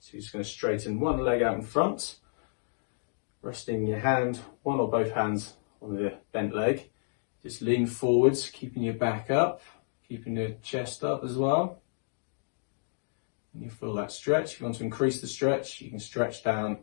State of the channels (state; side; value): silent; right; digital silence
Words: So you're just going to straighten one leg out in front, resting your hand, one or both hands on the bent leg. Just lean forwards, keeping your back up, keeping your chest up as well. And you feel that stretch. If you want to increase the stretch, you can stretch down